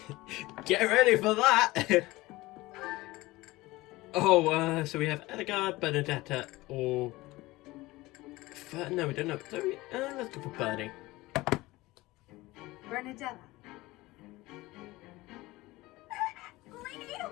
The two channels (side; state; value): right; quieter; 19.7 dB